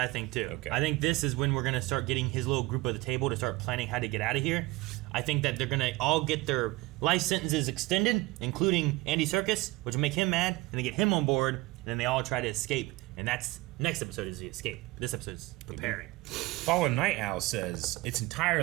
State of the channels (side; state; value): left; quieter; 21.0 dB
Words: think too. Okay. I think this is when we're gonna start getting his little group at the table to start planning how to get out of here. I think that they're gonna all get their life sentences extended, including Andy Serkis, which will make him mad, and they get him on board, and then they all try to escape. And that's next episode is the escape. This episode is preparing. Fallen Night Owl says it's